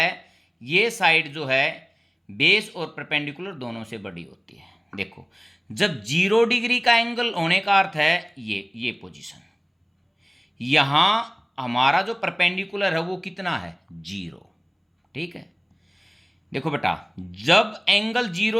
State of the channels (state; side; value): identical; both; correlation 1.00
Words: ये साइड जो है बेस और परपेंडिकुलर दोनों से बड़ी होती है। देखो, जब 0 डिग्री का एंगल होने का अर्थ है ये पोजीशन, यहां हमारा जो परपेंडिकुलर है वो कितना है 0। ठीक है, देखो बेटा, जब एंगल